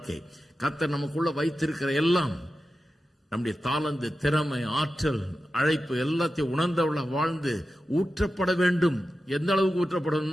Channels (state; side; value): normal; both; correlation 0.92